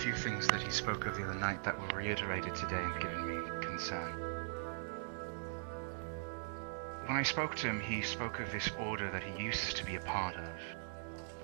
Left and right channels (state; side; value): silent; left; digital silence